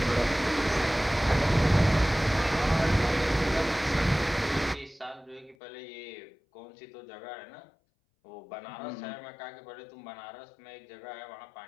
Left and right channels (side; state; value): right; drops out; at 5.6 s